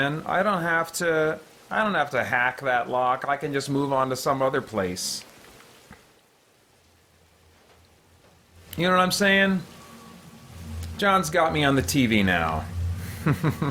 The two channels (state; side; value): identical; both; correlation 1.00